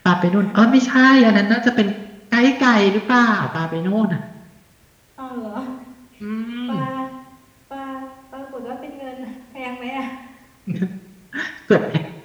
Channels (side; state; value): both; identical; correlation 1.00